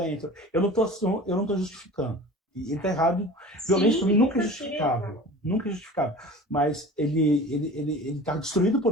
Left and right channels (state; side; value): normal; both; correlation 0.39